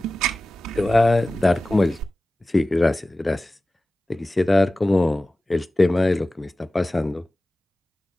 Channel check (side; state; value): both; normal; correlation 0.96